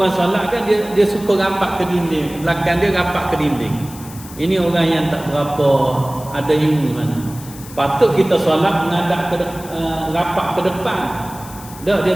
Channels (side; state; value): left; noise; hiss, 17 dB below the sound